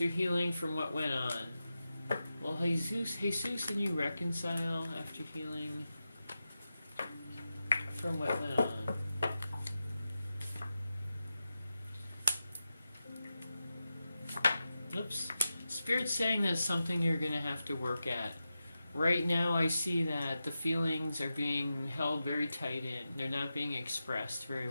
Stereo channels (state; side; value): inverted; both; correlation -0.91